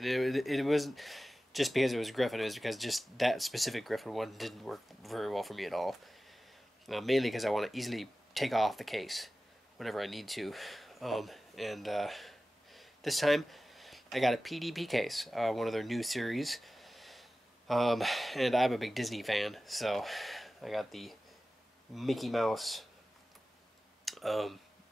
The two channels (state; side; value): normal; both; correlation 0.96